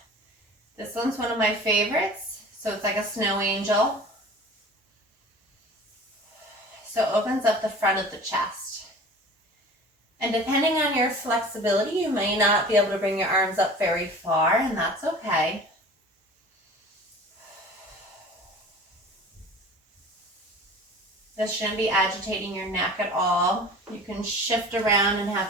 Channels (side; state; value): both; normal; correlation 0.41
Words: This one's one of my favorites. So it's like a snow angel. So it opens up the front of the chest. And depending on your flexibility, you may not be able to bring your arms up very far, and that's okay. This shouldn't be agitating your neck at all. You can shift around and have